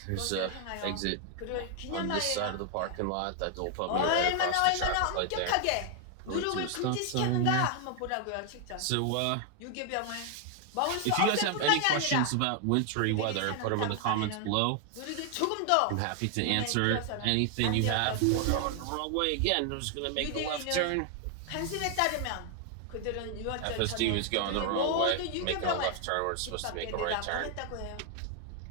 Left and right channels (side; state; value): both; different; correlation 0.00